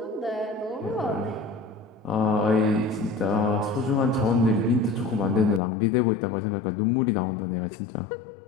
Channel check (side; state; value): right; drops out; at 5.6 s